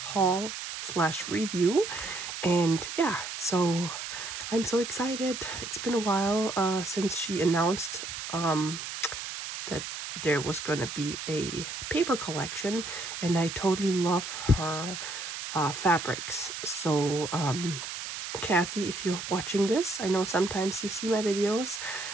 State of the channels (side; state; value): right; noise; hiss, 7 dB below the sound